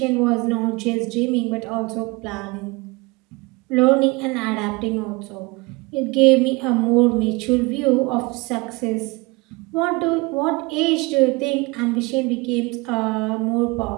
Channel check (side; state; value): left; quieter; 25.3 dB